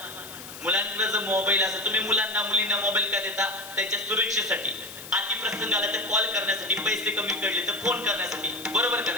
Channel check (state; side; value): noise; left; hiss, 13 dB below the sound